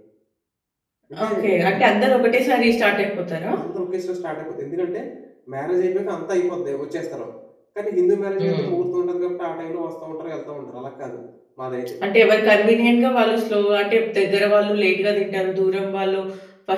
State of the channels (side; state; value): both; identical; correlation 1.00